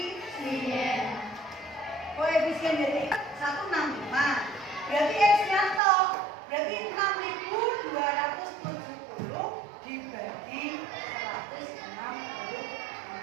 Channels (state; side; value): drops out; left; at 5.8 s